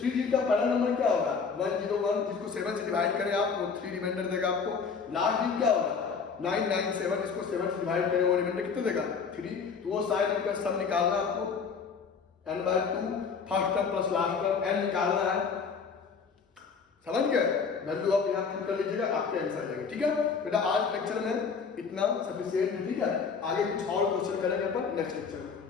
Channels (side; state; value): right; quieter; 5.6 dB